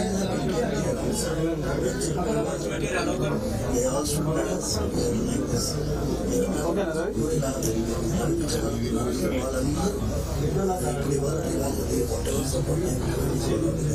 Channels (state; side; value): identical; both; correlation 1.00